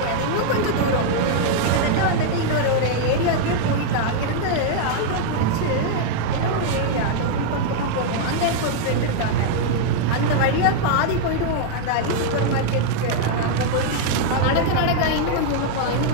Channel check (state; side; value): different; both; correlation -0.01